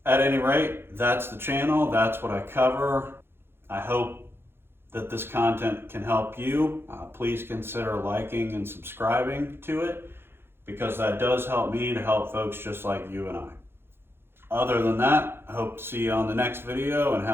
at any rate, that's the channel, that's what I cover. I hope that this content can help you. Please consider liking and subscribing to it, because that does help me to help folks just like you and I. Other than that, I hope to see you on the next video and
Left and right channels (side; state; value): left; late; 0.11 ms